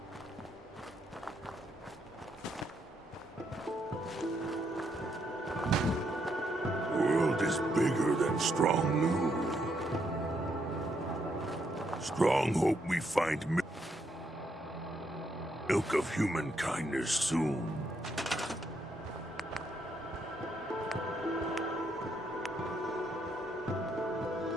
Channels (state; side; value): normal; both; correlation 0.76